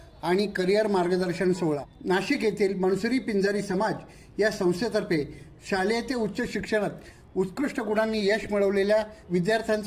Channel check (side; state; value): both; identical; correlation 1.00